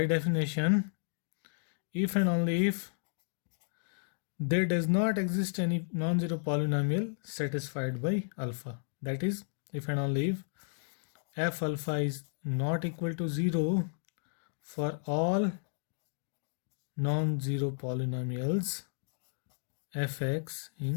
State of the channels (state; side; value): silent; right; digital silence